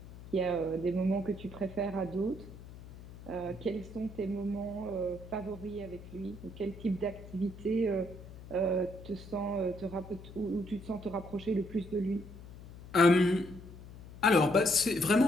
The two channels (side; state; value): left; noise; hum, 16 dB below the sound